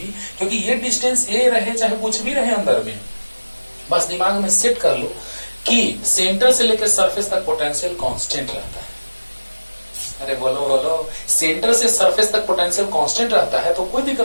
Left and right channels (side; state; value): both; inverted; correlation -1.00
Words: क्योंकि ये डिस्टेंस A रहे चाहे कुछ भी रहे अंदर में, बस दिमाग में सेट कर लो कि सेंटर से लेकर सरफेस तक पोटेंशियल कांस्टेंट रहता है। अरे बोलो, सेंटर से सरफेस तक पोटेंशियल कांस्टेंट रहता है तो कोई